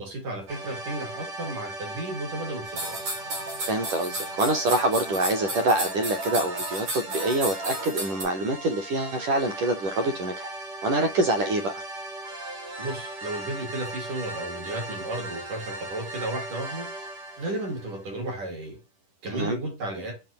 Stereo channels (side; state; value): left; late; 10 ms